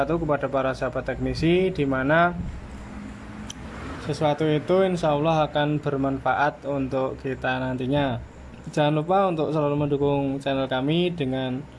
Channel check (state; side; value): identical; both; correlation 1.00